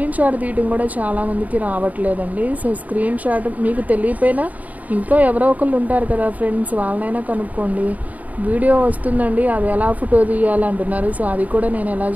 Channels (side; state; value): left; late; 0.074 ms